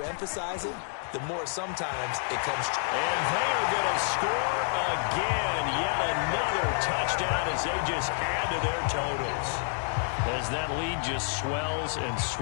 emphasize it, the more sometimes it comes true. And they are going to score again. Yet another touchdown as they just add to their totals. as that lead just swells and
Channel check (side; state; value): right; silent; 59 dB below the other